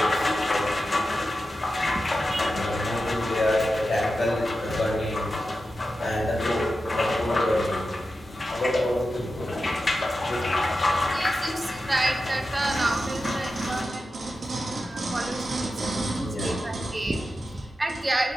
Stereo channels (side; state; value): both; normal; correlation 0.91